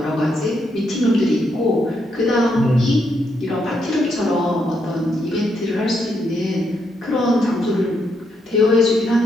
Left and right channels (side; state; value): both; normal; correlation 0.78